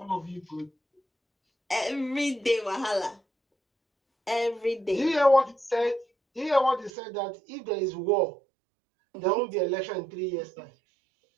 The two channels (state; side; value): drops out; left; at 6.9 s